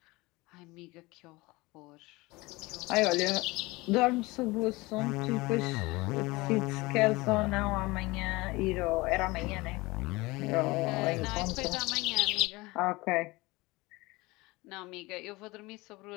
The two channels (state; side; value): quieter; right; 22.2 dB